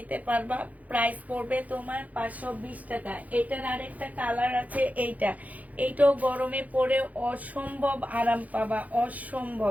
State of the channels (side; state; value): left; late; 0.075 ms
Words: পারবা। প্রাইস পড়বে তোমার 520 টাকা। এটার আরেকটা কালার আছে, এইটাও গরমে পরে অসম্ভব আরাম পাবা, অসম্ভব,